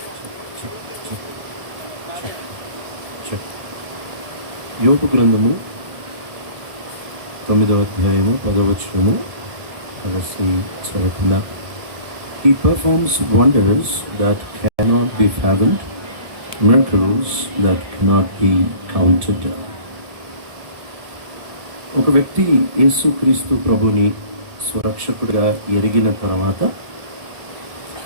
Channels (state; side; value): late; left; 1.7 ms